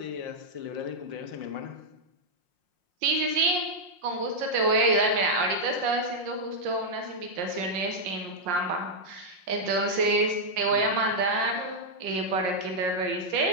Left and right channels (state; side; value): late; left; 5.6 ms